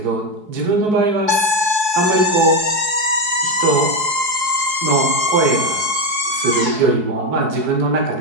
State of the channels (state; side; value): late; left; 4.7 ms